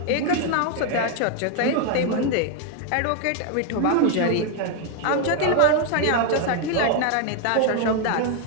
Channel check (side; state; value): both; different; correlation 0.01